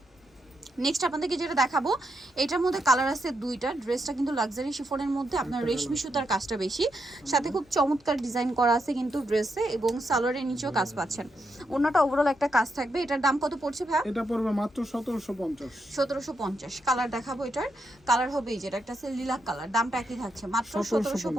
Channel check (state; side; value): normal; both; correlation 0.82